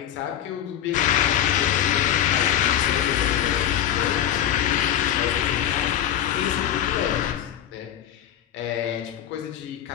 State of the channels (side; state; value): right; quieter; 10.8 dB